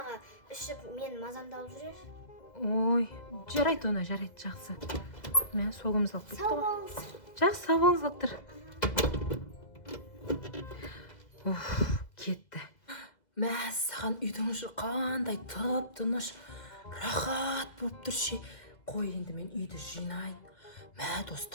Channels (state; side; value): late; right; 2.0 ms